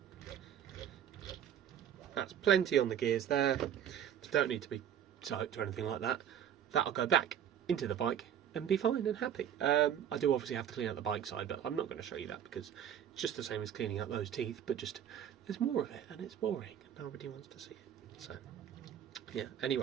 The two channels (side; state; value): left; quieter; 9.5 dB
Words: That's plenty on the gears there. Don't need to be soaked or anything like that. That'll go back into the bike and be fine and happy. I do obviously have to clean out the bike side, but I'm not going to show you that because it's just the same as cleaning out those teeth, but just there's more of it and it's boring and nobody wants to see it. So yeah,